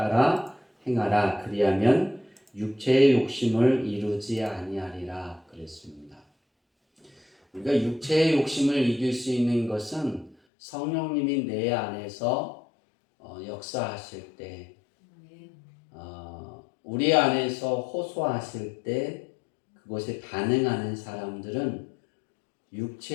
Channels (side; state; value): right; drops out; at 10.4 s